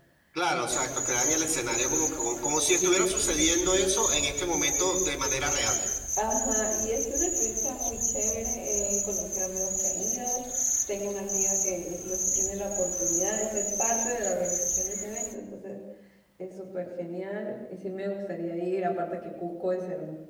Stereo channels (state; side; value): identical; both; correlation 1.00